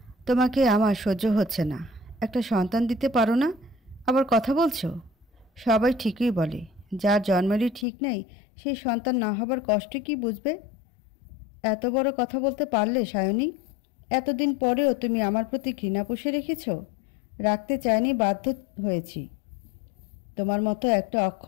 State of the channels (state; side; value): drops out; right; at 7.9 s